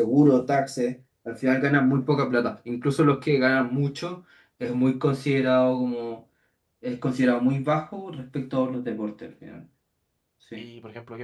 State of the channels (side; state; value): both; identical; correlation 1.00